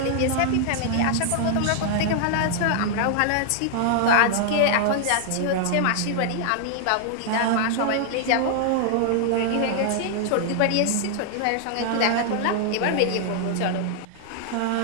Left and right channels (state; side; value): different; both; correlation 0.00